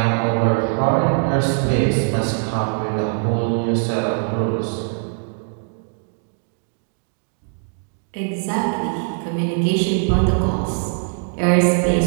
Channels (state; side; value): silent; left; 65 dB below the other